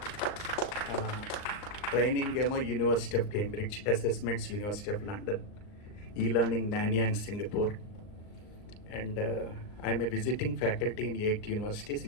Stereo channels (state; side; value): late; right; 39 ms